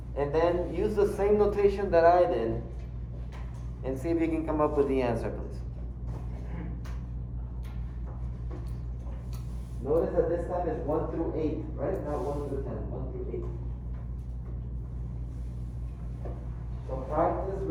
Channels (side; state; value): both; identical; correlation 1.00